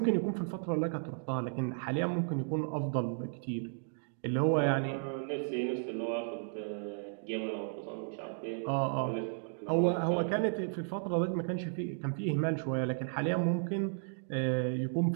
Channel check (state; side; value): silent; left; digital silence